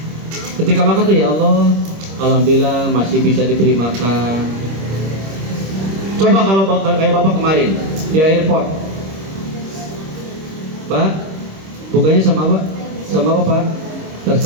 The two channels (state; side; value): late; left; 26 ms